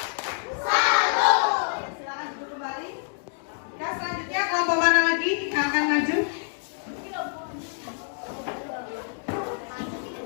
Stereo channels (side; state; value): right; silent; digital silence